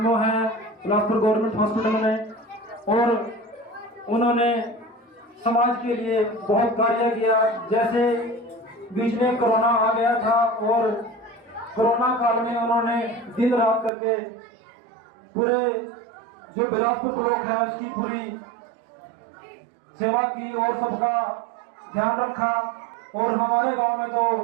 है बिलासपुर गवर्नमेंट हॉस्पिटल में, और उन्होंने समाज के लिए बहुत कार्य किया। जैसे बीच में कोरोना आ गया था और कोरोना काल में उन्होंने दिन रात करके पूरे जो बिलासपुर ब्लॉक है उसकी पूरी सेवा की और सबका ध्यान रखा। और हमारे गांव में तो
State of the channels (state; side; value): drops out; left; at 13.9 s